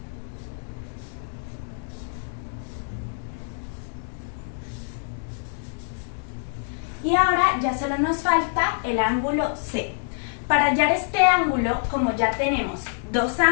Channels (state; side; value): silent; right; digital silence